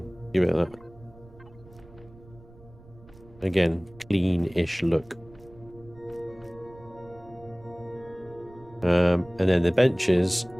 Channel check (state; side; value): noise; right; rumble, 23 dB below the sound